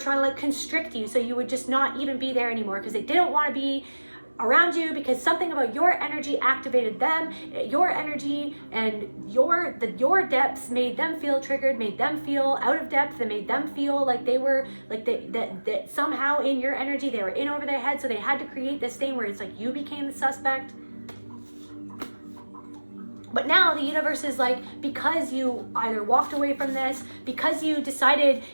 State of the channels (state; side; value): inverted; both; correlation -1.00